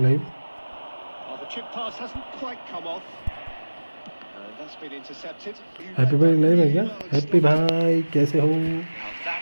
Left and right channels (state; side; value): inverted; both; correlation -1.00